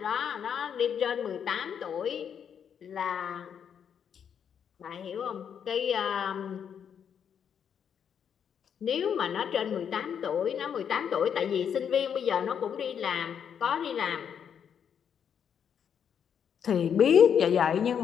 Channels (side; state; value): right; quieter; 8.0 dB